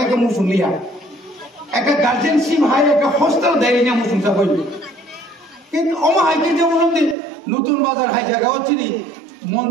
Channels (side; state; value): left; drops out; at 7.2 s